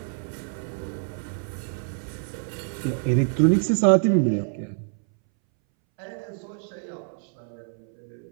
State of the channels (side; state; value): left; silent; 61 dB below the other